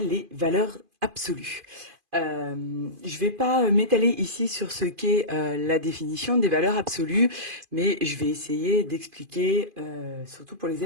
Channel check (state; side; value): late; left; 2.5 ms